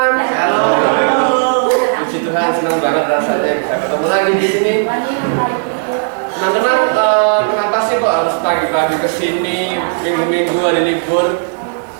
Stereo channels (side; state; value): left; silent; digital silence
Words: Shalom. Puji Tuhan, senang banget rasanya bisa ketemu lagi di sini. Teman-teman, kenapa sih kok harus pagi-pagi ke sini, minggu-minggu hari libur?